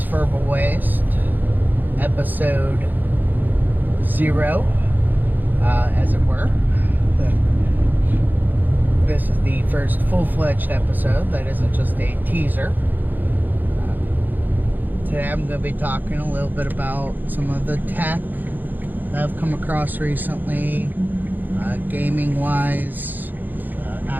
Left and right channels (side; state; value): left; late; 0.087 ms